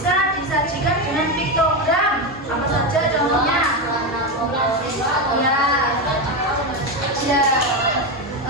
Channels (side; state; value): both; normal; correlation 0.13